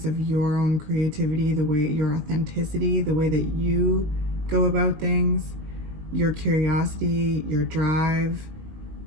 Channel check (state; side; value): late; left; 20 ms